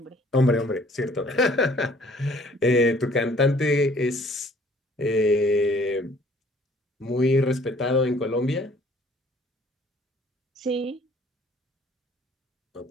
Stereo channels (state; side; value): normal; both; correlation 0.57